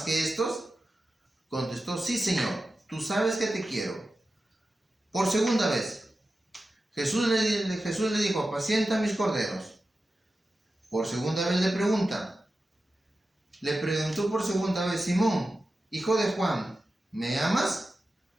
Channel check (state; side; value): normal; both; correlation 0.93